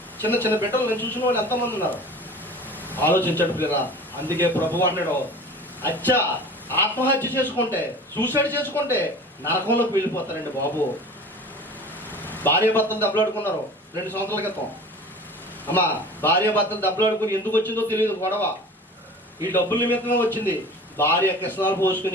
చిన్న చిన్న బిడ్డలు నేను చూసిన వాళ్ళు ఎంతమంది ఉన్నారు? ఆలోచించండి ప్రియులరా. అందుకే ప్రభు అన్నాడు, అచ్చా ఆత్మహత్య చేసుకుంటే, సూసైడ్ చేసుకుంటే నరకంలోకి వెళ్ళిపోతారండి బాబు. భార్య భర్తలు దెబ్బలాడుకున్నారు 2 సంవత్సరాల క్రితం. అమ్మా భార్య భర్తలు దెబ్బలాడుకుని ఎందుకు వచ్చిందో తెలియదు గొడవ. ఈ డబ్బుల నిమిత్తమే వచ్చింది. భార్య కిసనాలు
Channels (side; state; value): both; normal; correlation 0.40